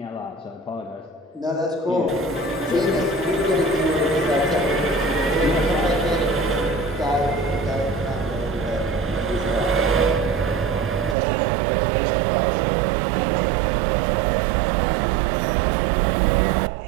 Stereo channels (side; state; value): left; drops out; at 11.2 s